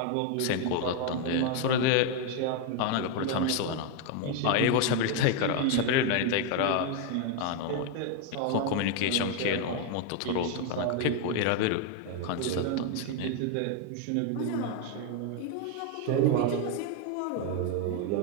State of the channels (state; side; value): different; both; correlation 0.01